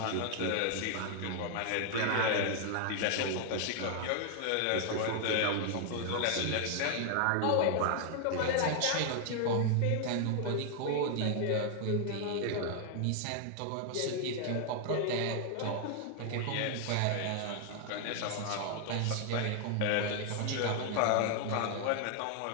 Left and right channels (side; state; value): both; different; correlation 0.00